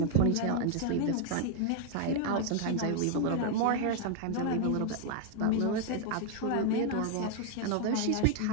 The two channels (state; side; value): different; both; correlation 0.00